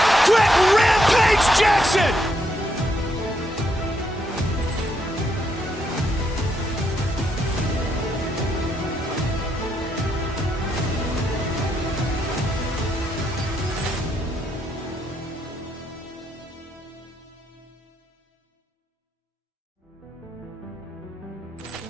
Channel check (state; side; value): normal; both; correlation 0.77